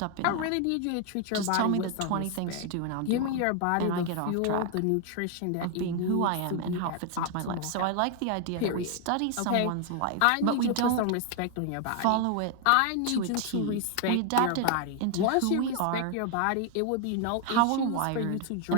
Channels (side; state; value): both; different; correlation 0.00